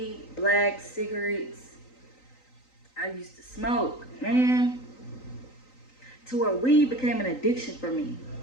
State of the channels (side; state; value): right; late; 3.9 ms